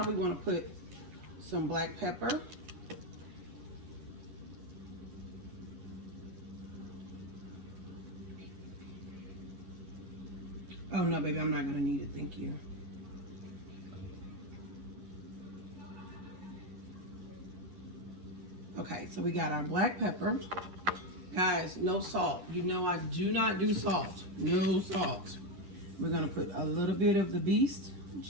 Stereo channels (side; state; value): left; late; 11 ms